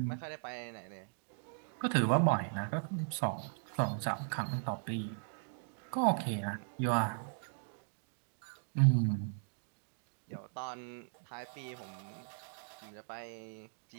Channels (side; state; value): left; silent; digital silence